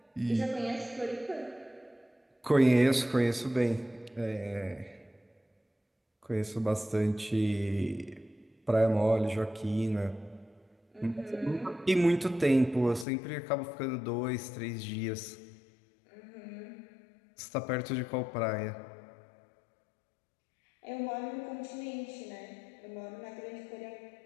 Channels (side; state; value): right; drops out; at 13.1 s